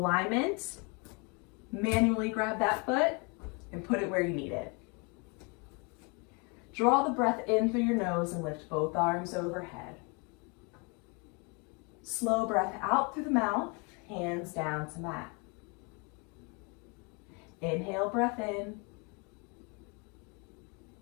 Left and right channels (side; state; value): right; quieter; 32.4 dB